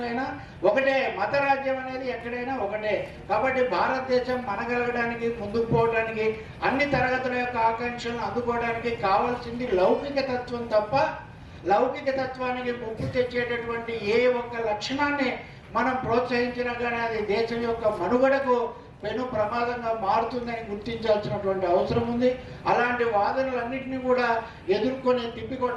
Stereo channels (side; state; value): both; identical; correlation 1.00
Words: అయినా ఒకటే, మత రాజ్యం అనేది ఎక్కడైనా ఒకటే. కాబట్టి భారతదేశం మనగలగడానికి, ముందుకు పోవడానికి, అన్ని తరగతుల యొక్క ఆకాంక్షలను అందుకోవడానికి కావాల్సింది లౌకిక తత్వం తప్ప లౌకిక తత్వానికి ముప్పు తెచ్చేటటువంటి ఏ ఒక్క లక్షణాన్ని మనం ప్రోత్సహించినా కానీ అది దేశం యొక్క మనుగడకు పెను ప్రమాదంగా మారుతుందని గుర్తించాల్సినటువంటి అవసరం ఉంది. అలాంటి వాదనలన్నింటినీ కూడా ఎదుర్కొని